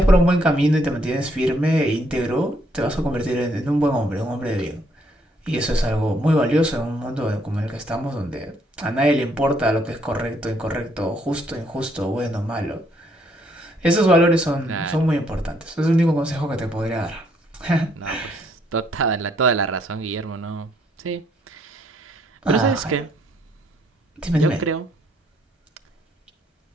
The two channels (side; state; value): both; normal; correlation 0.70